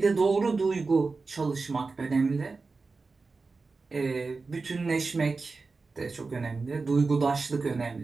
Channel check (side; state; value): left; quieter; 4.1 dB